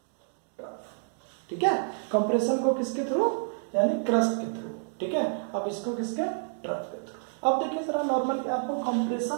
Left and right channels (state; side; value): silent; left; digital silence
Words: trough, ठीक है। कंप्रेशन को किसके थ्रू, यानी क्रस्ट के थ्रू, ठीक है। अब इसको किसके, ट्रफ के थ्रू। अब देखिए जरा नॉर्मली आपको